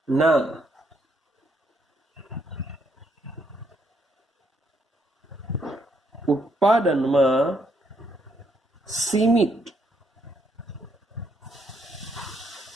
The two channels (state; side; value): normal; both; correlation 0.73